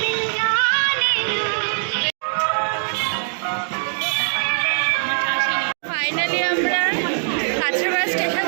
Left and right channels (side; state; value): left; silent; digital silence